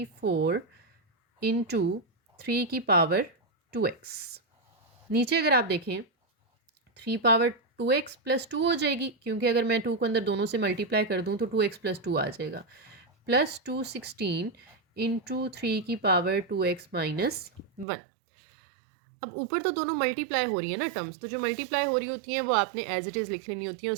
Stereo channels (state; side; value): drops out; left; at 17.9 s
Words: इंटू 3 की पावर 2x। नीचे अगर आप देखें 3 पावर 2x + 2 हो जाएगी, क्योंकि अगर मैं 2 को अंदर दोनों से मल्टीप्लाई कर दूं तो 2x + 2 आ जाएगा, प्लस 216 इंटू 3 की पावर 2x - 1। अब ऊपर तो दोनों मल्टीप्लाई हो रही है ना टर्म्स, तो जो मल्टीप्लाई हो रही होती हैं वो आपने एज इट इज़ लिख लेनी होती है,